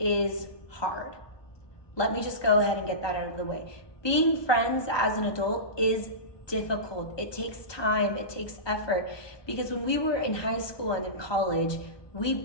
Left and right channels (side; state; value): right; late; 1.2 ms